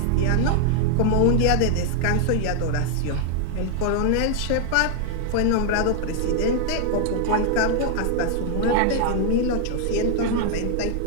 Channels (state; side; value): different; both; correlation 0.00